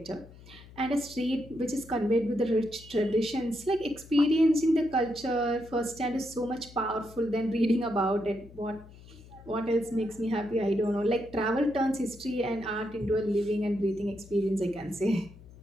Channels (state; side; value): noise; left; hum, 20 dB below the sound